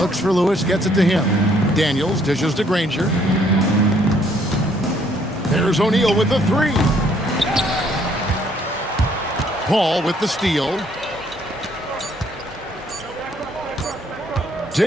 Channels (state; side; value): normal; both; correlation 0.65